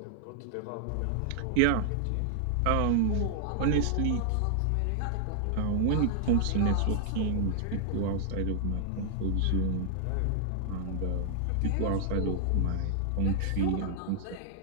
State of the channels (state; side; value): different; both; correlation 0.00